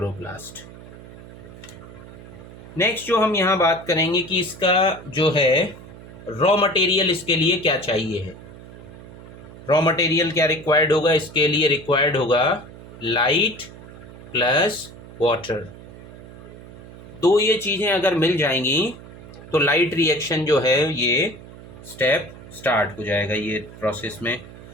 नेक्स्ट जो हम यहाँ बात करेंगे कि इसका जो है रॉ मटेरियल इसके लिए क्या चाहिए है. रॉ मटेरियल क्या रिक्वायर्ड होगा? इसके लिए रिक्वायर्ड होगा लाइट प्लस वाटर. दो ये चीज़ें अगर मिल जाएंगी तो लाइट रिएक्शन जो है ये स्टेप स्टार्ट हो जाएगा ये प्रोसेस में.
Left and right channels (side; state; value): right; noise; hum, 17 dB below the sound